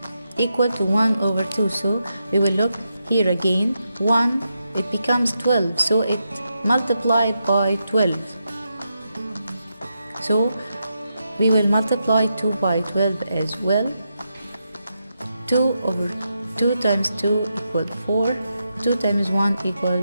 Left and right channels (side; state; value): both; inverted; correlation -0.85